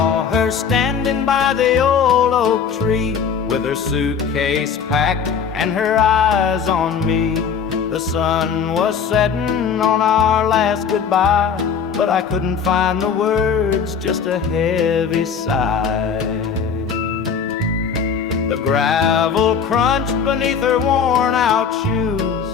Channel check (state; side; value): quieter; right; 6.6 dB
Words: her standing by the old oak tree, with her suitcase packed and her eyes on me. The sun was setting on our last goodbye, but I couldn't find the words, just a heavy sigh. The gravel crunched beneath her worn-out shoes.